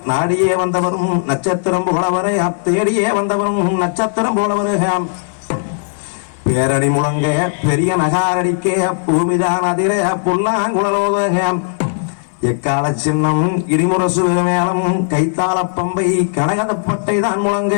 நாடியே வந்தவரும் நட்சத்திரம் போல வர தேடியே வந்தவரும் நட்சத்திரம் போல வர பேரணி முழங்க பெரிய நகாரடிக்க பூமிதான் அதிர புல்லாங்குழலோத எக்கால சின்னம் இடிமுரசு மேளம் கைத்தாள பம்பை கனகதப்பட்டை தான் முழங்க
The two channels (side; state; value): right; silent; 60 dB below the other